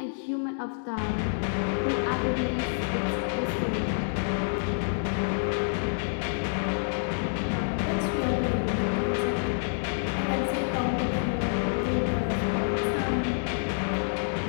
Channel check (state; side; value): silent; right; digital silence